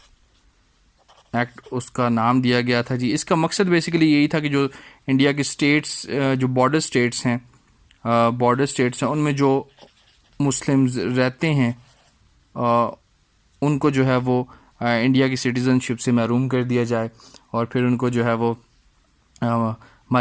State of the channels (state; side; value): identical; both; correlation 1.00